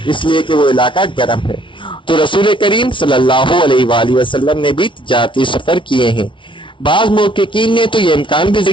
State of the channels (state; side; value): late; right; 0.24 ms